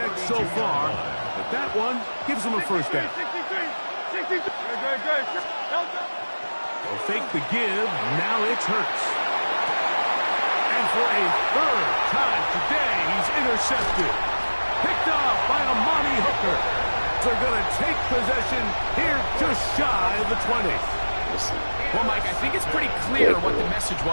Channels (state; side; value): inverted; both; correlation -1.00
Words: so far. But that one gives him a first down. They'll fake the give. Now it's Hurts. And for a third time today, he's intercepted. Picked off by Amani Hooker. They're going to take possession here just shy of the 20. Well, Mike, I think it's pretty clear what the message